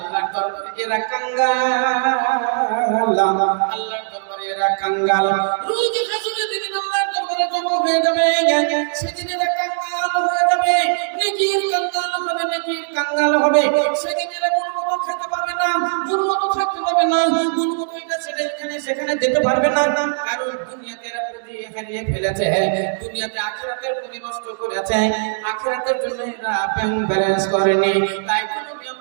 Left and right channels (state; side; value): silent; left; digital silence